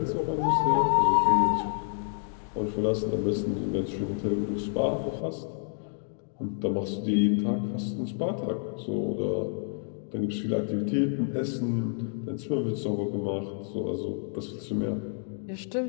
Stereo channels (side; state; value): right; silent; 59 dB below the other